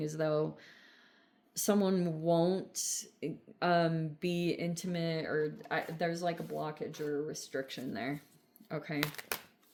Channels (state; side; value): identical; both; correlation 1.00